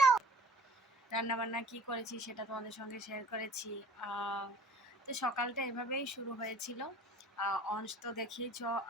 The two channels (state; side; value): normal; both; correlation 0.48